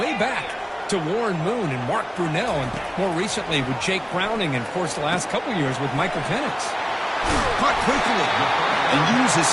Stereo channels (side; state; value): both; identical; correlation 1.00